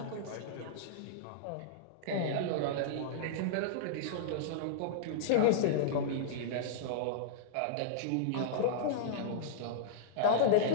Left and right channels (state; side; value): different; both; correlation -0.02